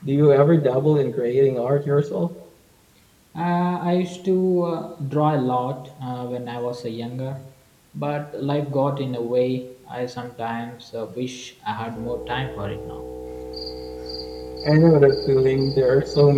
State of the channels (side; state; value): both; identical; correlation 1.00